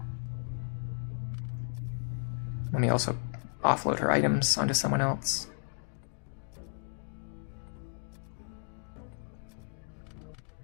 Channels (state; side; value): quieter; right; 37.3 dB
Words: Let me also offload her items onto someone else.